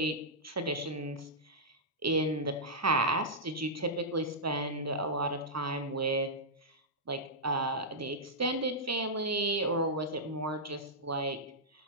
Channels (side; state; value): both; normal; correlation -0.11